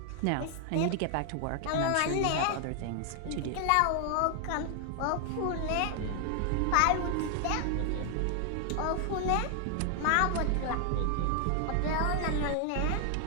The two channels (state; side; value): different; both; correlation 0.00